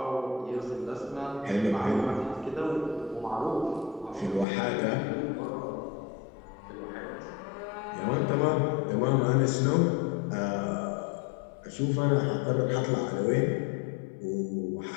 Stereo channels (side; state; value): right; drops out; at 4.5 s